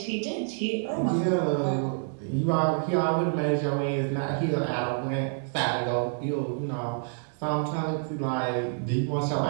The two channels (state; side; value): silent; left; digital silence